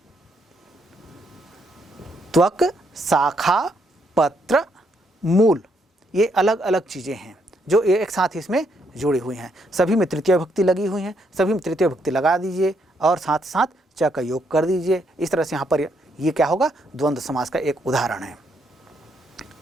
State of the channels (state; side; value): normal; both; correlation 0.75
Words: त्वक शाखा पत्र मूल, ये अलग अलग चीज़ें हैं जो एक साथ इसमें जुड़ी हुई हैं। सभी में तृतीय भक्ति लगी हुई हैं, सभी में तृतीय भक्ति लगा दीजिए और साथ साथ च का योग कर दीजिए। इस तरह से यहाँ पर ये क्या होगा, द्वंद्व समास का एक उदाहरण है।